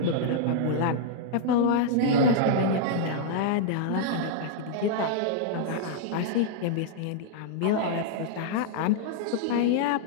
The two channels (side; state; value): both; different; correlation -0.01